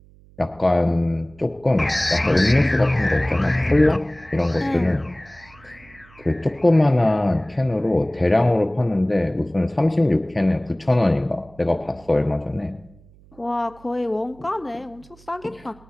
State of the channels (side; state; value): right; noise; hum, 26 dB below the sound